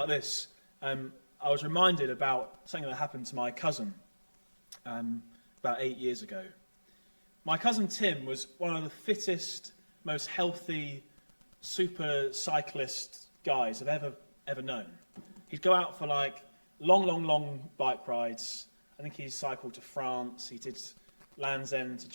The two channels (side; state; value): both; inverted; correlation -1.00